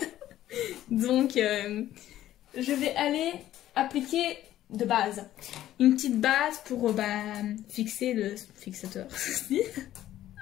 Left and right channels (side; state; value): right; quieter; 13.1 dB